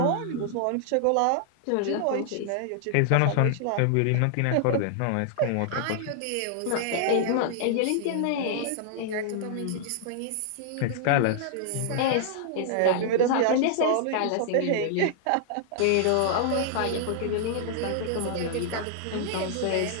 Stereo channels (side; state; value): both; different; correlation -0.01